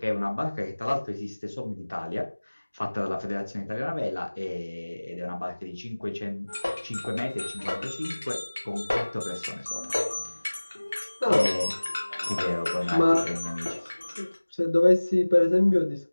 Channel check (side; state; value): both; inverted; correlation -1.00